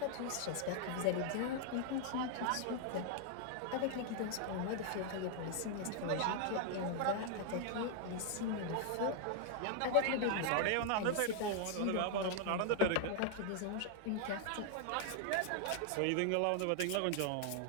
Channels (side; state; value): both; different; correlation 0.00